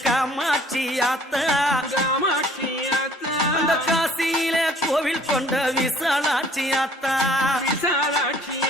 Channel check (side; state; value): both; normal; correlation 0.56